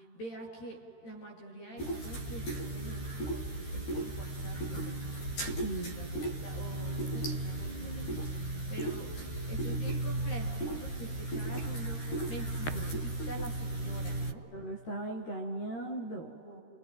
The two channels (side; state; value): right; late; 13 ms